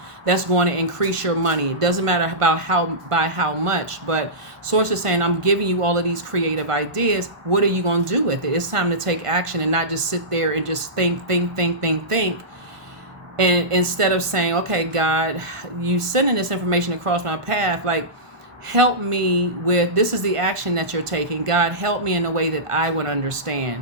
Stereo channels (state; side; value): late; left; 1.5 ms